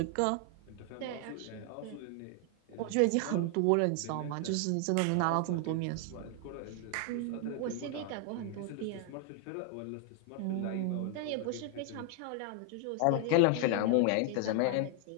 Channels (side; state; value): both; different; correlation 0.00